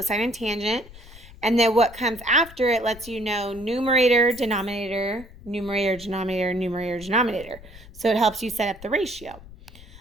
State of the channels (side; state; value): left; noise; rumble, 19 dB below the sound